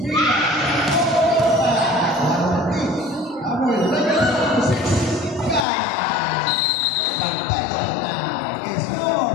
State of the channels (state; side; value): drops out; right; at 5.7 s